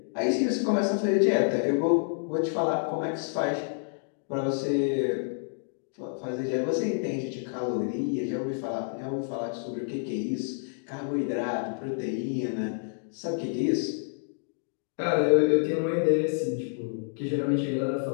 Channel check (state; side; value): silent; right; digital silence